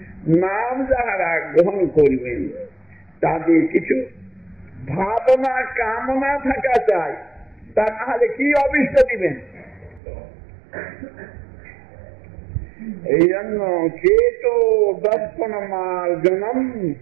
নাম যাহারা গ্রহণ করবেন তাদের কিছু ভাবনা কামনা থাকা চাই, তা নাহলে কি অভিষ্ট দিবেন? এই জন্য চেতো দর্পণ মার্জনম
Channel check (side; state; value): left; drops out; at 10.0 s